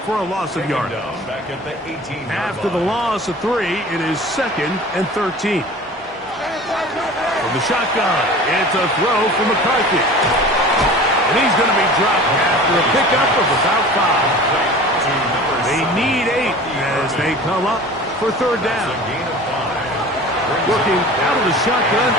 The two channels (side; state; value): both; normal; correlation 0.40